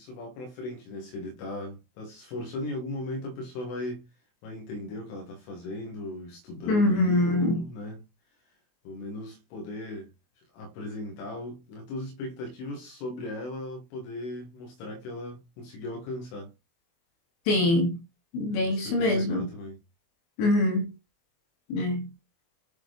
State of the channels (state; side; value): late; right; 24 ms